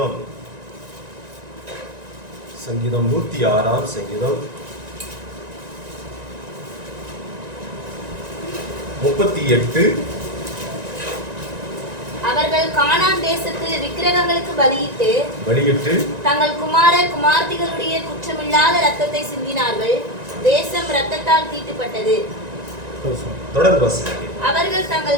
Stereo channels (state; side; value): late; left; 1.9 ms